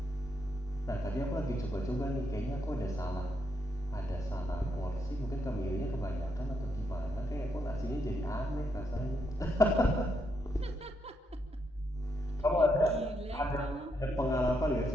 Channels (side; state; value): both; normal; correlation 0.79